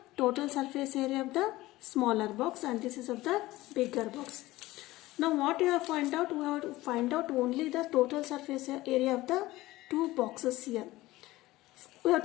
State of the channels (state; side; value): quieter; right; 18.0 dB